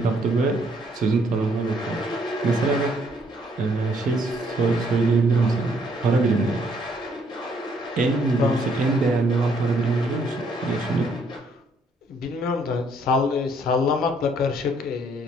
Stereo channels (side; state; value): both; normal; correlation 0.67